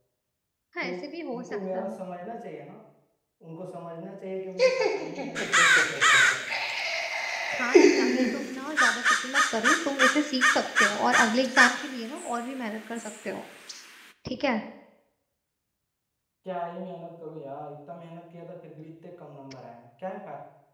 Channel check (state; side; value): identical; both; correlation 1.00